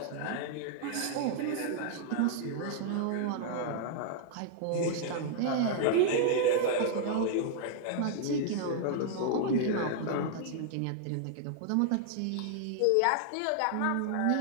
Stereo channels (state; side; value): different; both; correlation -0.01